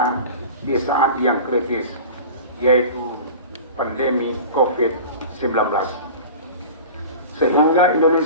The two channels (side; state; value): both; inverted; correlation -0.36